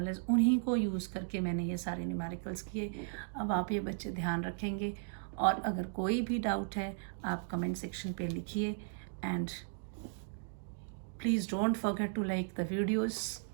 उन्हीं को यूज़ करके मैंने ये सारे न्यूमेरिकल्स किए. अब आप ये बच्चे ध्यान रखेंगे, और अगर कोई भी डाउट है आप कमेंट सेक्शन पे लिखिए. And please don't forget to like the videos.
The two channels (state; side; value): silent; left; digital silence